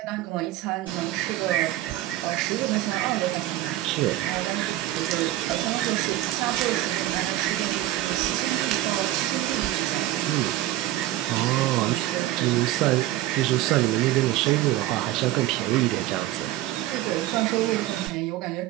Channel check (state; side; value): quieter; left; 15.2 dB